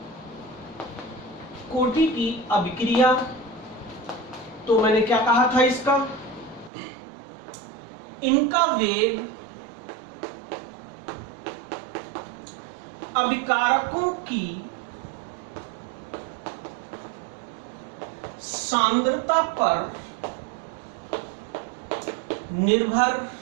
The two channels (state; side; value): drops out; left; at 6.7 s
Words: कोटि की अभिक्रिया। तो मैंने क्या कहा था, इसका इनका वेग अभिकारकों की सांद्रता पर निर्भर